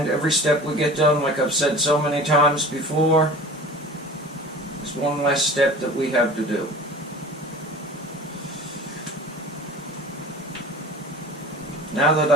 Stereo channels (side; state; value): both; normal; correlation 0.40